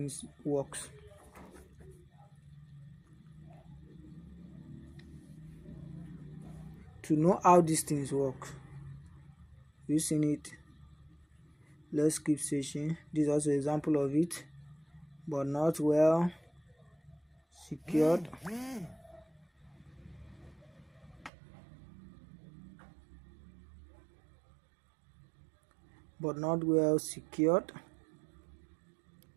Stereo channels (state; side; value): drops out; left; at 21.3 s